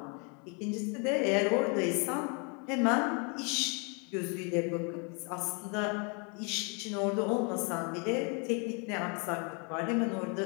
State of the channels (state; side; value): quieter; right; 35.0 dB